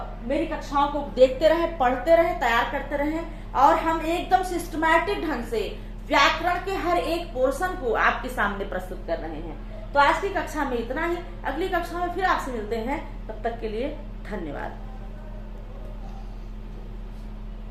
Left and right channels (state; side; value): identical; both; correlation 1.00